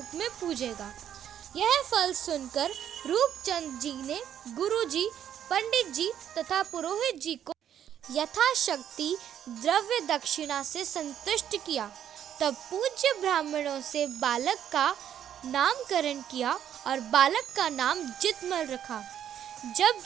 में पूजेगा। यह फल सुनकर रूपचंद जी ने गुरुजी, पंडित जी तथा पुरोहित जी को यथाशक्ति द्रव्य दक्षिणा से संतुष्ट किया। तब पूज्य ब्राह्मणों से बालक का नामकरण किया और बालक का नाम जितमल रखा। जब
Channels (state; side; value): quieter; left; 9.9 dB